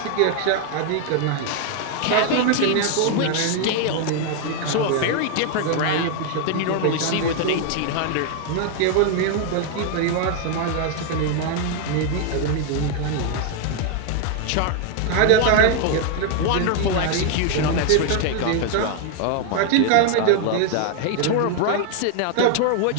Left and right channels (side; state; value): both; different; correlation 0.00